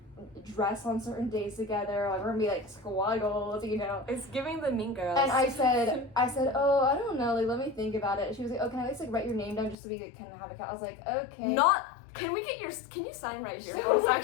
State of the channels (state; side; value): drops out; right; at 9.8 s